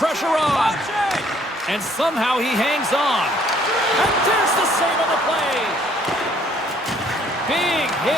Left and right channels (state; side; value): normal; both; correlation 0.62